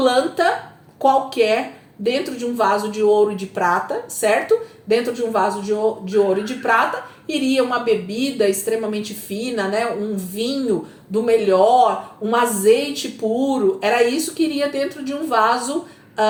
qualquer dentro de um vaso de ouro e de prata, certo? Dentro de um vaso de ouro e de prata iria uma bebida extremamente fina, né? Um vinho do melhor, um azeite puro. Era isso que iria dentro de um vaso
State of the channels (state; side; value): identical; both; correlation 1.00